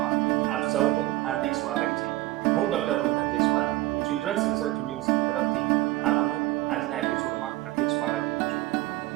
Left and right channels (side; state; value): left; quieter; 17.7 dB